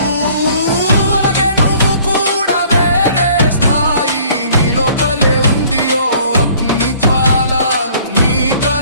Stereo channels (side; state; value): both; inverted; correlation -0.55